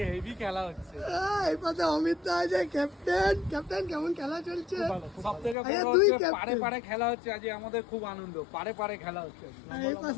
হেভি খেলা হচ্ছে। এই পাশে অমিত দা আছে, ক্যাপ্টেন। কেমন খেলা চলছে? সব থেকে বড় হচ্ছে পারে পারে খেলা হচ্ছে। আজ আমাদের খুব আনন্দ, পারে পারে খেলা হচ্ছে। এই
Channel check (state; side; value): drops out; right; at 5.6 s